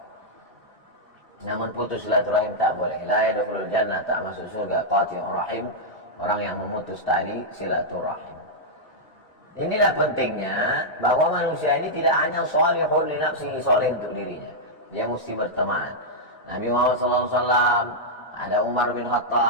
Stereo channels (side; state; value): right; late; 2.5 ms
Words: Namun putus silaturahim tak boleh. La yadkhulul jannah, tak masuk surga qati'ur rahim, orang yang memutus tali silaturahim. Inilah pentingnya bahwa manusia ini tidak hanya sholihun li nafsihi, soleh untuk dirinya. Dia mesti berteman. Nabi Muhammad SAW, ada Umar bin